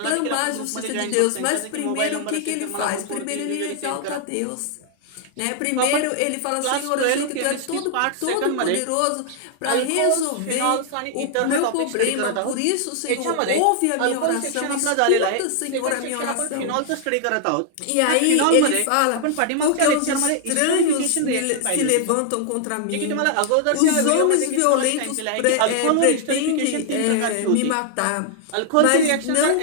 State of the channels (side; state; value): both; different; correlation -0.01